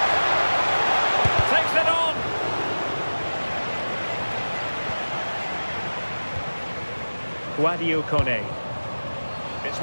Takes it on. Guadio Kone. It's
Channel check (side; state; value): both; inverted; correlation -1.00